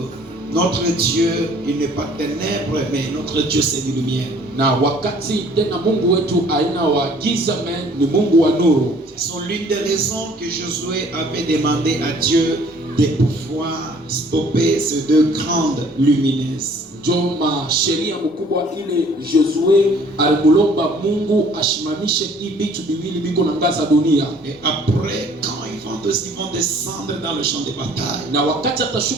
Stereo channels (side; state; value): both; normal; correlation 0.56